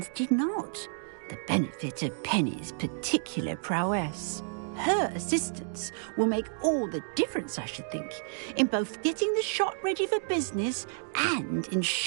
did not. The benefit of Penny's particular prowess. Her assistance will make all the difference, I should think, in both getting the shop ready for business and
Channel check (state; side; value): silent; left; digital silence